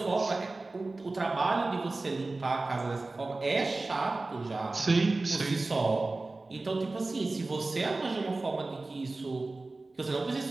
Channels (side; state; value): left; quieter; 3.3 dB